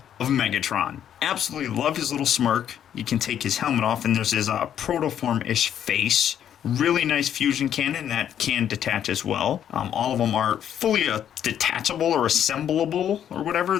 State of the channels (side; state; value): right; quieter; 9.8 dB